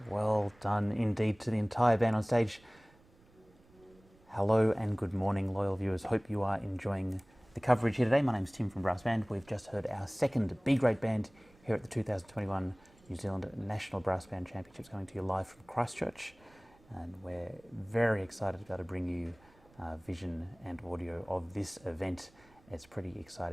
Well done indeed to the entire band on stage. Hello and good morning, loyal viewers. Hope you are enjoying the coverage here today. My name's Tim from Brass Band. We've just heard our second B-grade band here at the 2021 New Zealand National Brass Band Championships, coming to you live from Christchurch. And we're very excited to be able to bring you vision and audio of this event. It's pretty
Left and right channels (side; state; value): right; noise; rumble, 28 dB below the sound